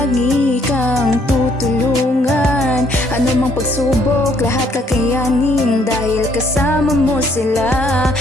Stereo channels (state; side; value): normal; both; correlation 0.66